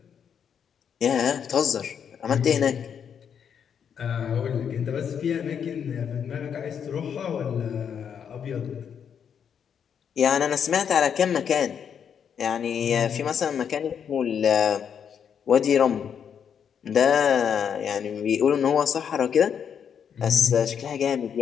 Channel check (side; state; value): right; quieter; 7.8 dB